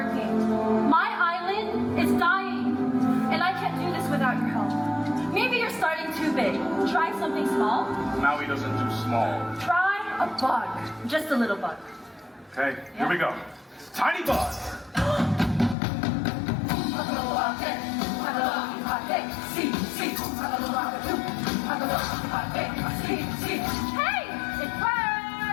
My island is dying, and I can't do this without your help. Maybe you're starting too big. Try something small. Maui doesn't do small. Try a bug. Just a little bug. Okay, here we go. Tiny bug. Hey! It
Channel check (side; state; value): right; drops out; at 15.8 s